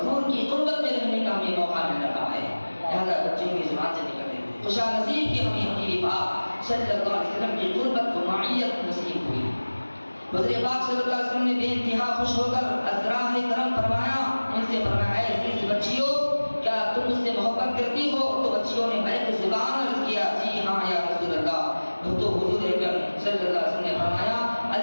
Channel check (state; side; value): inverted; both; correlation -1.00